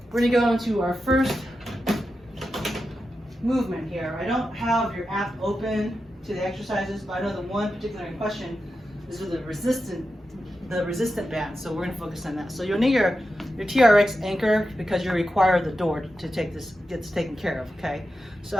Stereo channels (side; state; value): both; normal; correlation 0.90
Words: we're gonna go into our first movement here. I don't have your app open to the exercises, but I know the one particular in question is with the resistant band, so we're gonna focus on that. So you'll need your Trx Anchor because you require the door to take this, gets taken care of, okay? So